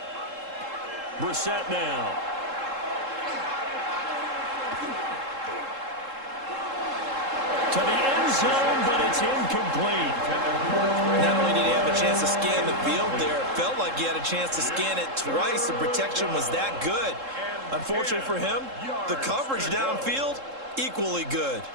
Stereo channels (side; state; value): left; late; 3.7 ms